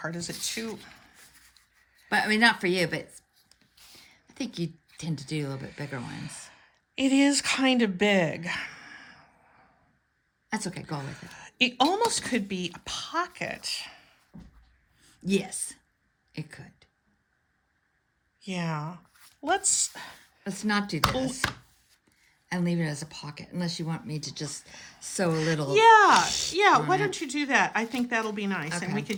Is it too? But I mean, not for you, but I think you tend to do a little bit bigger ones. It is kind of big. That's okay. Go with it. It almost could be a pocket. Yes, it could. Yeah. Let's not do this and leave it as a pocket unless you want me to just sew a little. Yeah. Why don't you do that? I think that'll be nice. Okay. And we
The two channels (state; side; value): identical; both; correlation 1.00